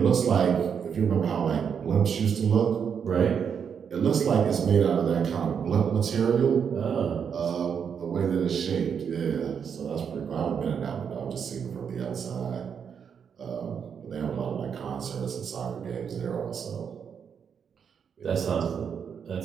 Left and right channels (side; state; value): left; quieter; 7.2 dB